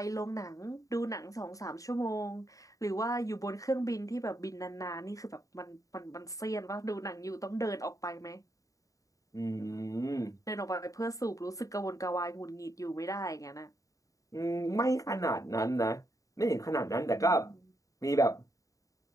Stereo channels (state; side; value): late; right; 0.16 ms